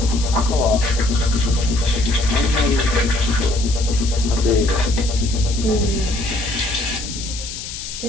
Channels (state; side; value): noise; left; hiss, 9 dB below the sound